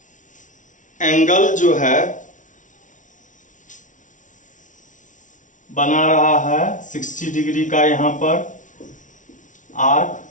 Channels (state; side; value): late; right; 0.37 ms